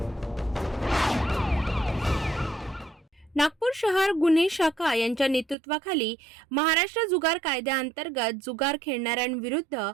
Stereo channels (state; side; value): drops out; left; at 5.6 s